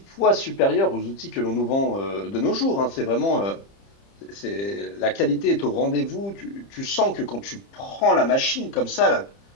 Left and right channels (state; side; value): late; right; 30 ms